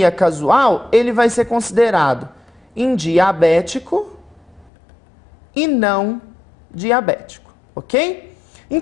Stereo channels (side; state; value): right; drops out; at 4.7 s